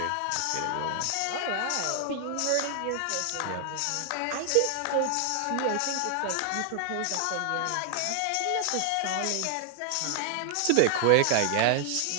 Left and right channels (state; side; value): different; both; correlation 0.00